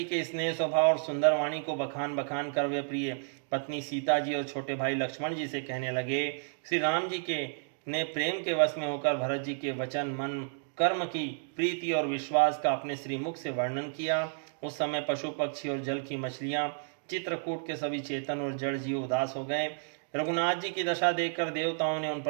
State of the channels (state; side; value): silent; left; digital silence